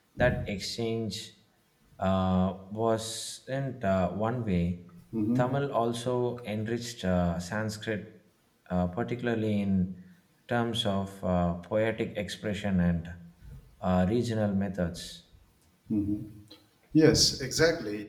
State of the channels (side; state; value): both; identical; correlation 1.00